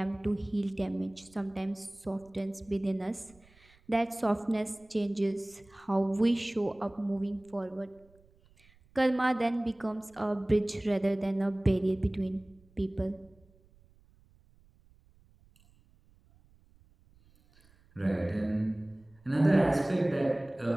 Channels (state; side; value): noise; right; rumble, 29 dB below the sound